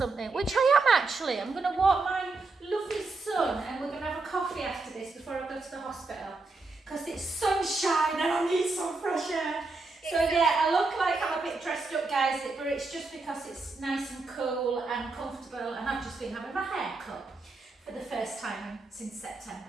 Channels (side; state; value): left; quieter; 3.6 dB